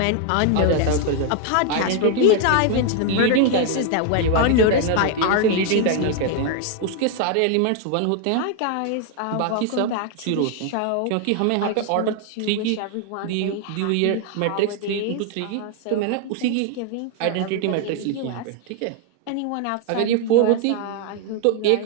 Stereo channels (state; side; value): different; both; correlation 0.00